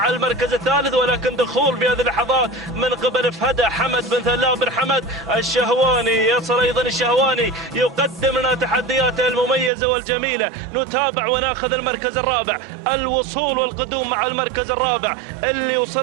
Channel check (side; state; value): left; drops out; at 9.7 s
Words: المركز الثالث، ولكن دخول في هذه اللحظات من قبل فهدة حمد بن ثلاث بن حمد الشهواني. يصل أيضا الشهواني يقدم لنا تحدياته المميزة والجميلة. نتابع وناخذ المركز الرابع، الوصول والقدوم مع المركز الرابع اللي